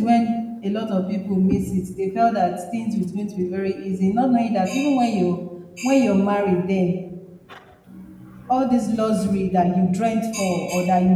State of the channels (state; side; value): identical; both; correlation 1.00